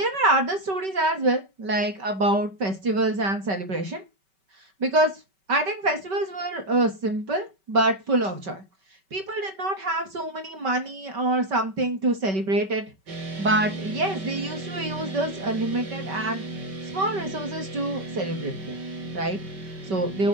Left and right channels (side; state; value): left; late; 5.2 ms